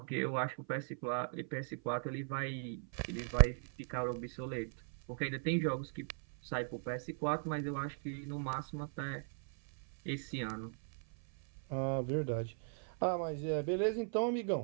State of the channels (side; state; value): left; silent; 52 dB below the other